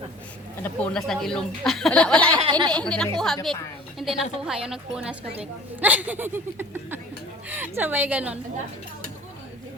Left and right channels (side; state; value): both; normal; correlation 0.46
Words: Napunas ng ilong. Wala. Hindi nakuha, Vic. Hindi nakuha yung nagpunas ka, Vic. Sabay ganon.